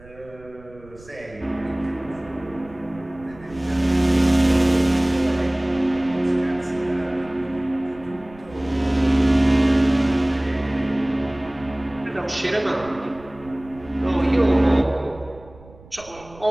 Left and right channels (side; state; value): right; noise; rumble, 22 dB below the sound